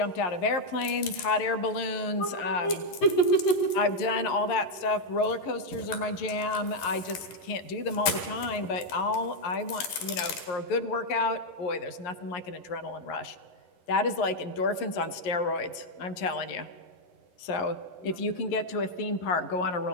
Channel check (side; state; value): right; late; 11 ms